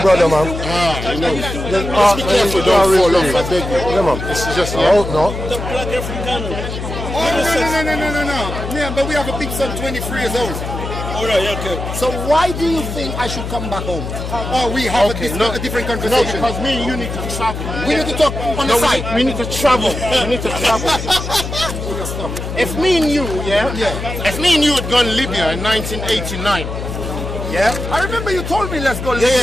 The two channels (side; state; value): left; noise; hum, 6 dB below the sound